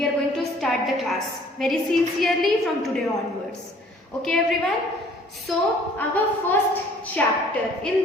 are going to start the class very sincerely from today onwards. Okay everyone, so our first chapter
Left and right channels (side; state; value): both; normal; correlation 0.55